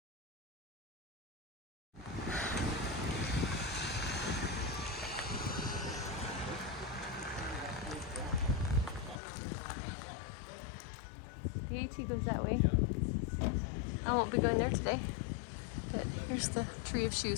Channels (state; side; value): drops out; right; at 9.2 s